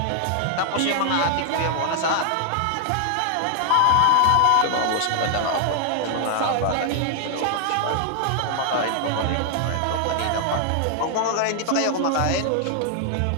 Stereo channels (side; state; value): both; different; correlation 0.00